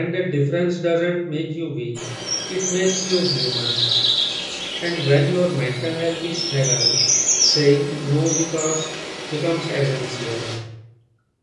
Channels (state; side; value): identical; both; correlation 1.00